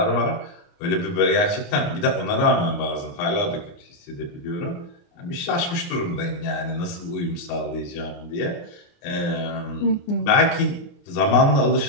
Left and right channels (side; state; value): right; late; 29 ms